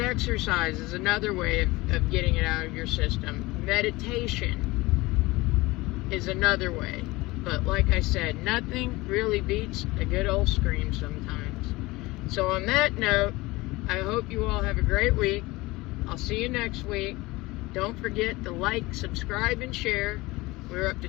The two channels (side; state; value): right; quieter; 21.2 dB